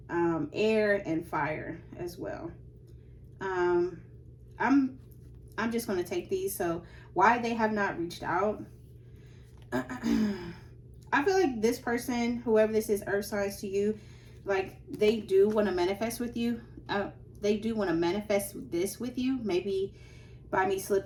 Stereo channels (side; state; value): both; identical; correlation 1.00